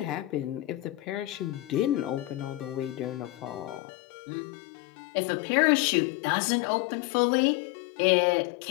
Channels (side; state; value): right; drops out; at 3.8 s